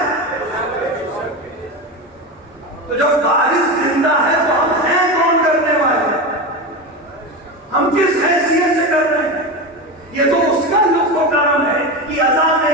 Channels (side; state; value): both; normal; correlation 0.21